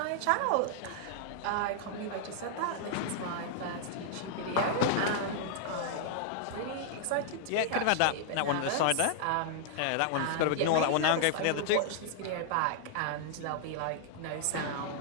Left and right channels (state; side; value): different; both; correlation -0.01